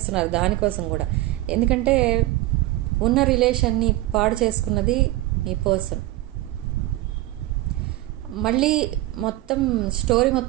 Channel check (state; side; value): quieter; left; 17.2 dB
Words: దానికోసం కూడా. ఎందుకంటే ఉన్న రిలేషన్ని పాడు చేసుకున్నది మీ పర్సన్. మళ్ళీ స్టోరీ